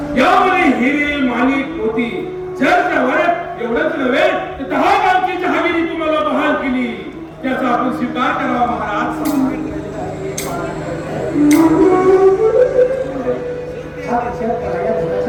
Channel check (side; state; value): both; identical; correlation 1.00